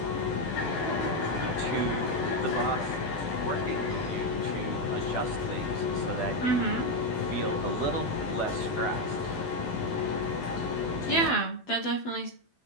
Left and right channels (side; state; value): right; late; 12 ms